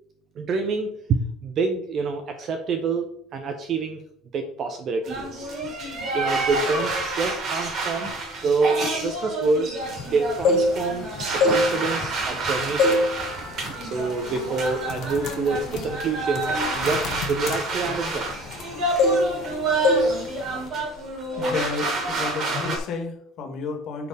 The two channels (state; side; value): normal; both; correlation 0.48